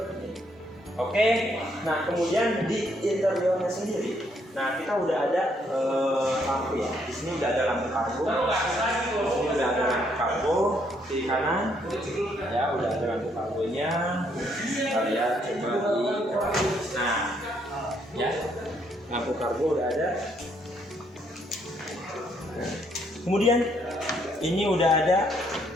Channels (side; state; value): both; normal; correlation 0.71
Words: Oke, nah kemudian di interiornya sendiri, nah kita udah ada lampu ya. Di sini udah ada lampu kargo. Di sini udah ada lampu kargo kiri kanan. Ya, udah ada lampu kargonya. Kita lihat coba di. Nah, ya, lampu kargo udah ada. Kemudian ini udah ada